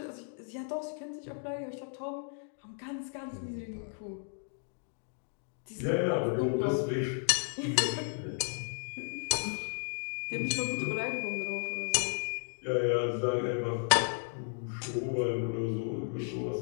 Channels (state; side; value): silent; right; 55 dB below the other